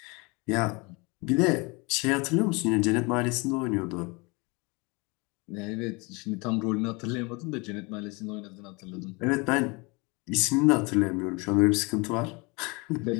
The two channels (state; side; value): quieter; right; 27.9 dB